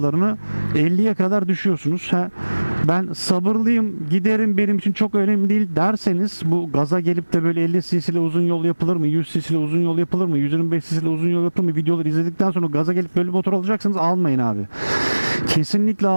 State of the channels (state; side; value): inverted; both; correlation -1.00